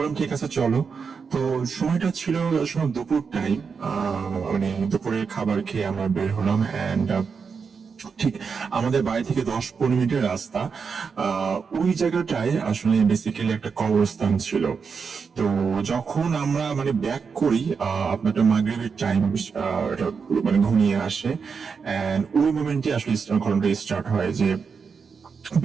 ঠিক আছে চলো। তো সময়টা ছিল দুপুর টাইম, মানে দুপুরের খাবার খেয়ে আমরা বের হলাম। এন্ড ঠিক আমাদের বাড়ি থেকে 10-15 মিনিটের রাস্তা। ওই জায়গাটায় আসলে বেসিক্যালি একটা কবরস্থান ছিল। তো যখন আমরা মানে ব্যাক করি, আপনার মাগরিবের টাইম মানে ঘনিয়ে আসে, এন্ড ওই মোমেন্টে আসলে ঘটনাটা স্টার্ট হয় যে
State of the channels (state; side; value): quieter; left; 5.7 dB